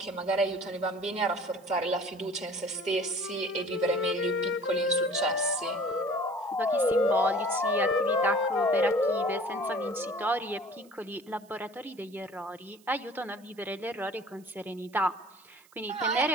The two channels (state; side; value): noise; right; hiss, 28 dB below the sound